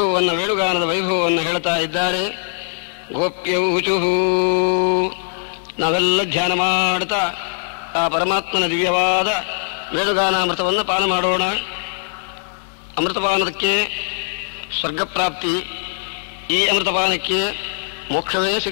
ವೇಣುಗಾನದ ವೈಭವವನ್ನು ಹೇಳ್ತಾ ಇದ್ದಾರೆ. ಗೋಪ್ಯೌಚುಹು, ನಾವೆಲ್ಲ ಧ್ಯಾನ ಮಾಡ್ತಾ ಆ ಪರಮಾತ್ಮನ ದಿವ್ಯವಾದ ವೇಣುಗಾನಾಮೃತವನ್ನು ಪಾನ ಮಾಡೋಣ. ಅಮೃತಪಾನಕ್ಕೆ ಸ್ವರ್ಗಪ್ರಾಪ್ತಿ, ಈ ಅಮೃತಪಾನಕ್ಕೆ ಮೋಕ್ಷವೇ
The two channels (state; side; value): silent; right; 66 dB below the other